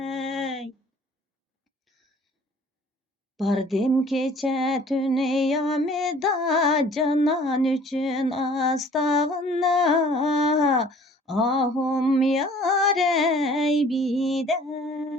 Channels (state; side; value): normal; both; correlation 0.52